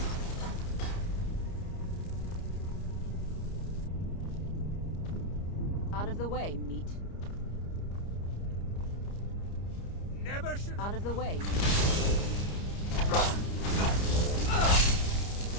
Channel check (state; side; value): late; right; 30 ms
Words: Out of the way, meat. Never should. Out of the way.